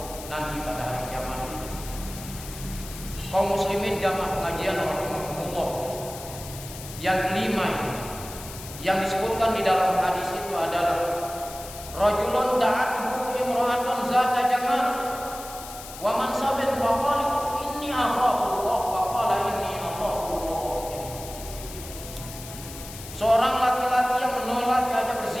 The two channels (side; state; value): left; noise; hiss, 13 dB below the sound